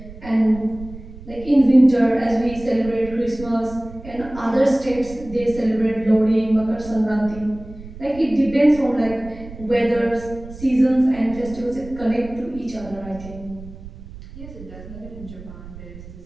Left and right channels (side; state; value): right; noise; rumble, 15 dB below the sound